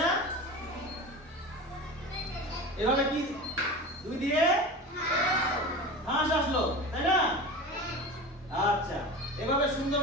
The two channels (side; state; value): both; normal; correlation 0.31